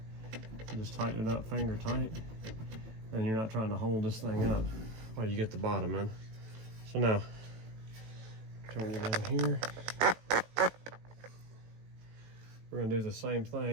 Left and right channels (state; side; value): late; left; 18 ms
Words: And just tighten it up finger tight. And you're not trying to hold this thing up while you get the bottom in. So now, turn you down here. We're gonna do the same